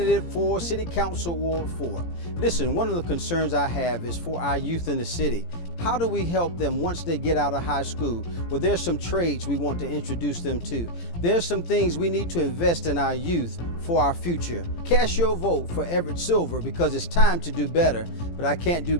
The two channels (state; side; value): late; right; 17 ms